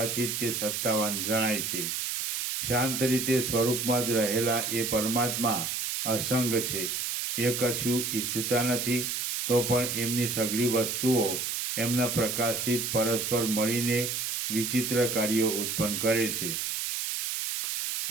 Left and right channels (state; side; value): noise; right; hiss, 2 dB below the sound